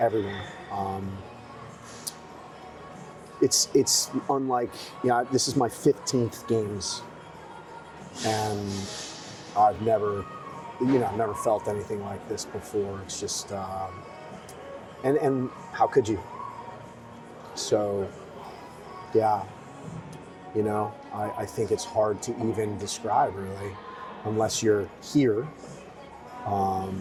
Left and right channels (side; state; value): both; identical; correlation 1.00